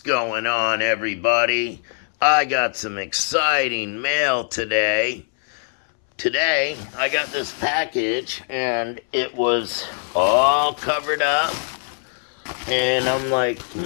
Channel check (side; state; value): right; silent; 64 dB below the other